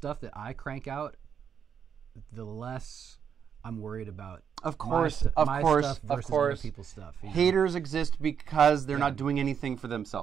that I crank out, the less I'm worried about. Of course, my stuff versus other people's stuff. You know? Haters exist because they're not doing anything for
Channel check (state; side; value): quieter; left; 7.7 dB